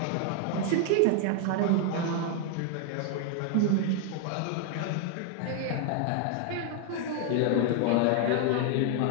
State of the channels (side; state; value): both; different; correlation 0.00